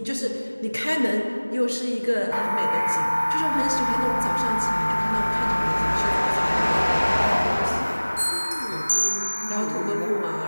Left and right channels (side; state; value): both; inverted; correlation -1.00